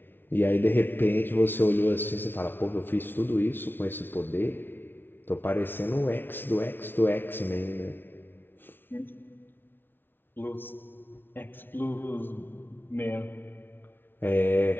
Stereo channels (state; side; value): late; right; 0.10 ms